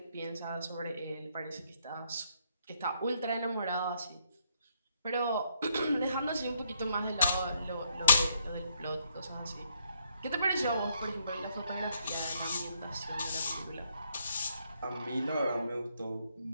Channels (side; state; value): both; inverted; correlation -0.73